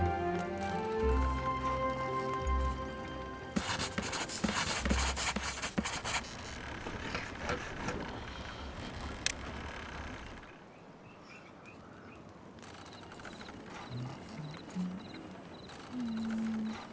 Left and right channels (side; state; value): both; identical; correlation 1.00